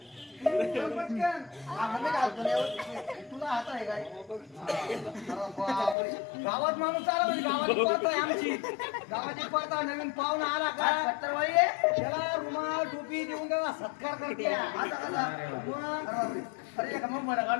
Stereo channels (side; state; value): right; drops out; at 6.0 s